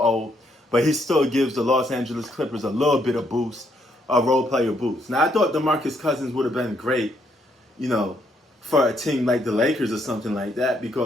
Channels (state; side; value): normal; both; correlation 0.73